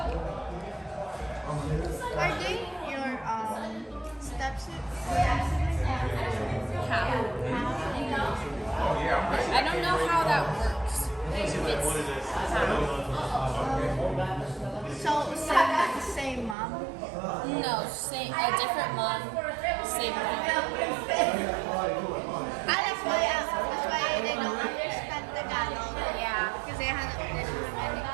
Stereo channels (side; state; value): left; drops out; at 16.6 s